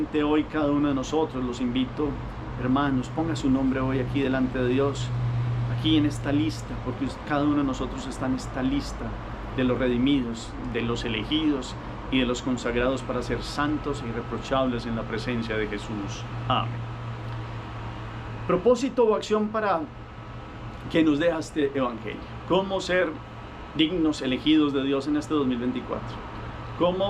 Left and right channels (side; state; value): both; identical; correlation 1.00